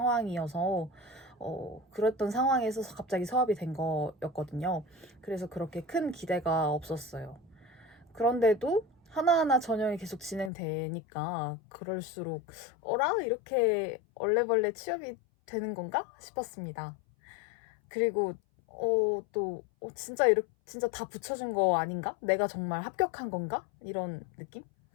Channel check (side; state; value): right; drops out; at 10.5 s